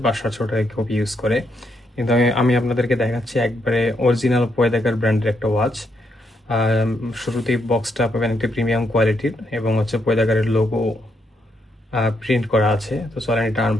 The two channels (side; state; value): both; normal; correlation 0.77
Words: 500 টাকা কপি ইউজ করে। কিন্তু আমি আপনাদেরকে দেখাচ্ছি একবারে অরিজিনাল পয়দাগার ব্র্যান্ডের একটা ওয়াচ। শুরুতেই বক্সটা পাবেন একটা প্রিমিয়াম কোয়ালিটির এবং হচ্ছে পয়দাগারের লোগো প্রিন্ট করা আছে। তো চলেন এটা